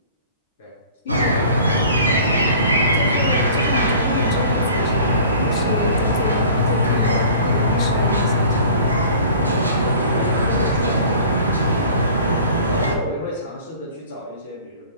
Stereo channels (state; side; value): inverted; both; correlation -0.46